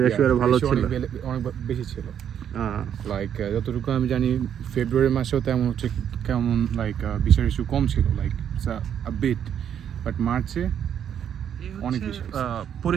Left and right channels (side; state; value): left; quieter; 9.0 dB